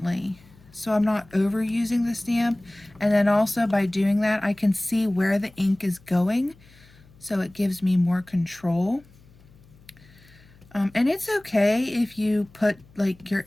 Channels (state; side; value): noise; left; hum, 26 dB below the sound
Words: so I'm not overusing the stamp. And then also by doing that I can see where the ink is going, so it gives me more control. And it's okay if you put like your